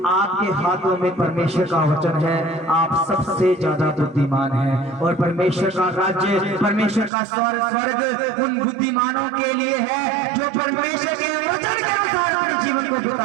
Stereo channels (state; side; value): drops out; left; at 7.1 s